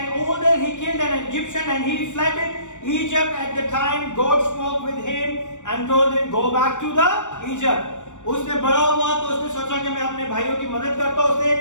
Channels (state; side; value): late; right; 0.85 ms